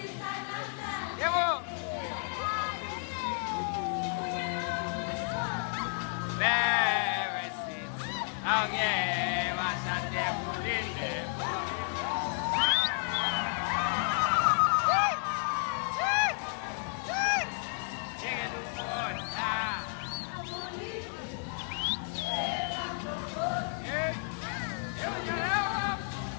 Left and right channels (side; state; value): right; silent; 56 dB below the other